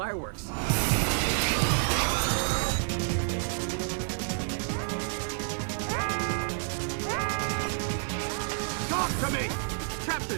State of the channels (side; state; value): left; silent; 57 dB below the other